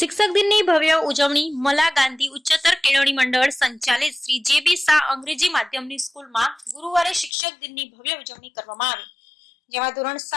દિનની ભવ્ય ઉજવણી મલા ગાંધી ઉચ્ચતર કેળવણી મંડળ સંચાલિત શ્રી જે.બી. શાહ અંગ્રેજી માધ્યમની સ્કૂલમાં ગુરુવારે શિક્ષક દિનની ભવ્ય ઉજવણી કરવામાં આવી, જેમાં ધોરણ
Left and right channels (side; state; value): right; drops out; at 7.3 s